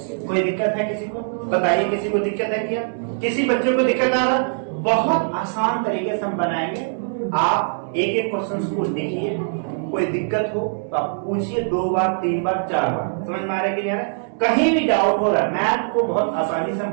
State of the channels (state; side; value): silent; left; 60 dB below the other